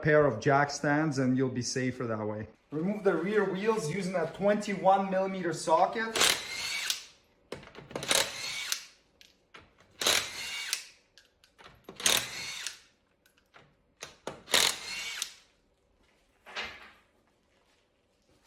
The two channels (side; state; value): both; identical; correlation 1.00